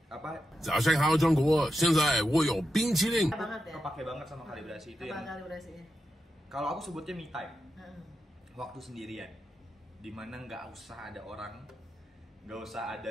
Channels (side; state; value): both; normal; correlation 0.88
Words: 早上好，中国！现在我有冰淇淋。kepake banget sama kalibrasi itu. Yang kalibrasinya? Kalau aku sebutnya me time, waktu sendirian, dimana nggak usah ada orang, nggak usah